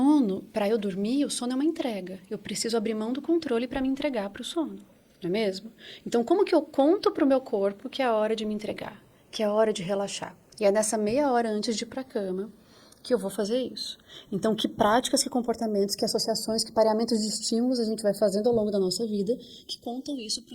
para eu dormir, o sono é uma entrega. Eu preciso abrir mão do controle para me entregar para o sono. Não é mesmo? Então, como que eu conto para o meu corpo que é a hora de me entregar, que é a hora de relaxar? E é nessa meia hora antes de ir para a cama que eu vou fazer isso. Então, que práticas, que comportamentos, que associações, que pareamentos de estímulos a gente vai fazendo ao longo da nossa vida que contam isso para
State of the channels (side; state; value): both; identical; correlation 1.00